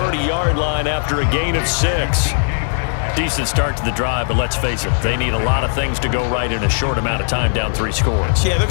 line after a gain of 6. Decent start to the drive, but let's face it, they need a lot of things to go right in a short amount of time, down 3 scores. Yeah, they're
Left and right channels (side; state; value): right; silent; digital silence